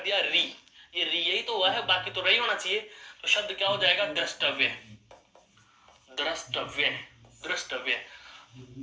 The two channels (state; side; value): identical; both; correlation 1.00